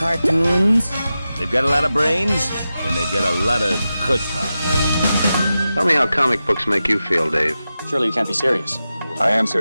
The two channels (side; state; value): both; inverted; correlation -0.92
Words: They've got a lot of brains, and they've got a lot of chutzpah. Tell me how comic books make you feel, Dave. Surely you can't be serious. I am